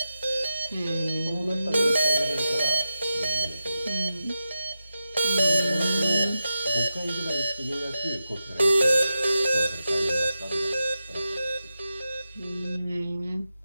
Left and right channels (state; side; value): inverted; both; correlation -0.90